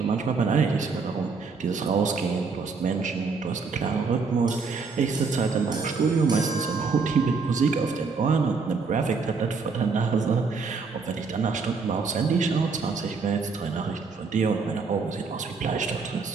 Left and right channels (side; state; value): left; quieter; 4.7 dB